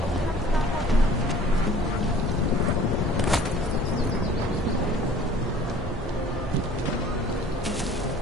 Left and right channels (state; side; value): normal; both; correlation 0.50